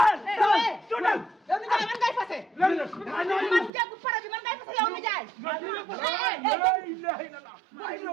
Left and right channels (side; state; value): left; drops out; at 3.7 s